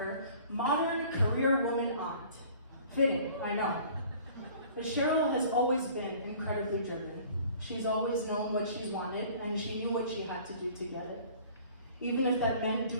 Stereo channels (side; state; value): both; inverted; correlation -0.50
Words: Modern Career Woman Aunt. Fitting, I know. But Cheryl has always been incredibly driven. She's always known what she's wanted, and she knew what she had to do to get it. Even if that meant